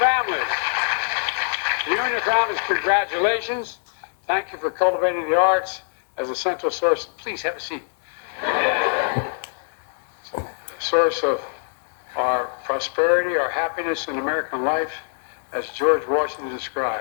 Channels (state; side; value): silent; right; 63 dB below the other